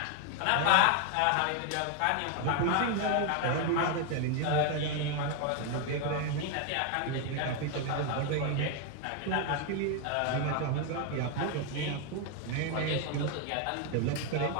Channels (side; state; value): both; different; correlation 0.01